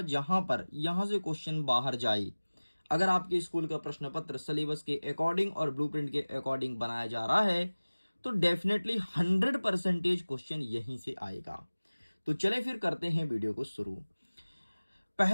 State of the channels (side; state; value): both; inverted; correlation -1.00